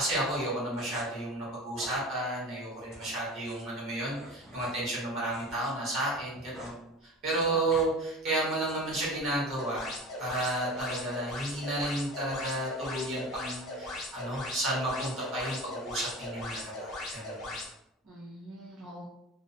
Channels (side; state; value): both; normal; correlation 0.34